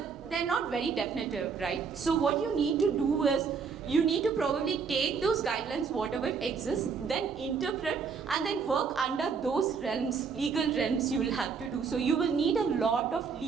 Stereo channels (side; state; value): left; quieter; 5.7 dB